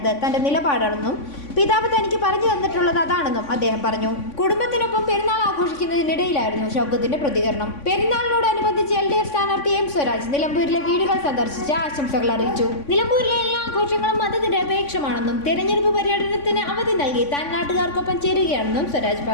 തന്റെ നിലപാടാണെന്നും പിതാവ് തനിക്ക് പറഞ്ഞു തന്നിട്ടുള്ളത് അതാണെന്നും അദ്ദേഹം പറഞ്ഞു. കുടുംബത്തിനൊപ്പം പെരുന്നാൾ ആഘോഷിക്കുന്നതിനിടയിലായിരുന്നു ഷൗക്കത്തിന്റെ പ്രതികരണം. പെരുന്നാളിനോടനുബന്ധിച്ച് LDF സ്ഥാനാർത്ഥി M സ്വരാജ് നിലമ്പൂരിലെ വീടുകൾ സന്ദർശിച്ച് ആശംസകൾ അറിയിച്ചു. നിലമ്പൂരിലെ എല്ലാ ആഘോഷങ്ങളും മതനിരപേക്ഷമാണെന്നും തെരഞ്ഞെടുപ്പ് പര്യടനത്തിന് അവധി നൽകി താൻ നാട്ടുകാർക്കൊപ്പം ചേരുകയാണെന്നും സ്വരാജ്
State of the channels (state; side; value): late; right; 3.5 ms